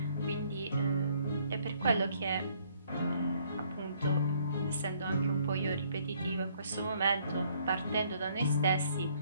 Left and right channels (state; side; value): inverted; both; correlation -0.65